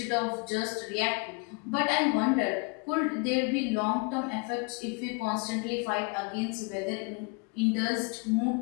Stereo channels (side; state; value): right; quieter; 31.8 dB